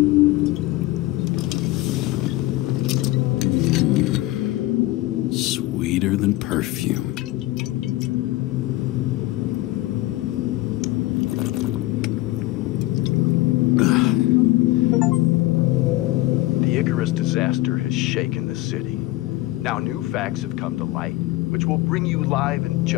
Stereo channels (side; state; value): right; quieter; 18.2 dB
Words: Sweeter than perfume. The Icarus disaster has shaken the city. Now new facts have come to light, which we'll bring you live in